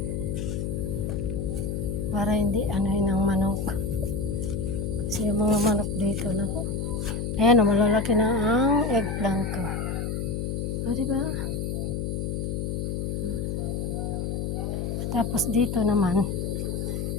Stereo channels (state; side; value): noise; left; hum, 2 dB below the sound